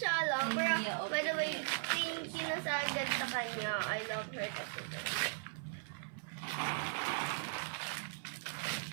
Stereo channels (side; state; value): left; silent; 52 dB below the other